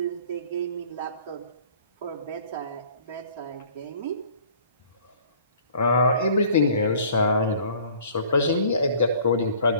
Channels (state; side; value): inverted; both; correlation -0.52